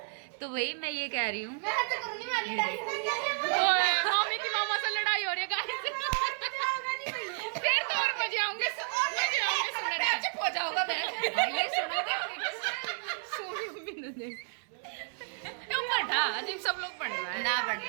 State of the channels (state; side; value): silent; left; 57 dB below the other